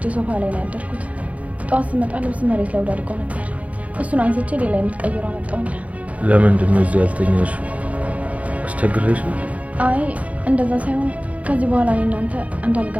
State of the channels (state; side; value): late; left; 0.068 ms